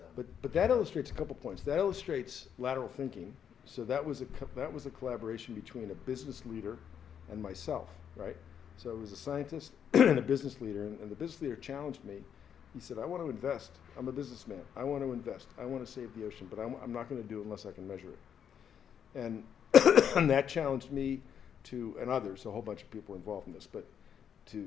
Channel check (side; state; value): right; quieter; 8.3 dB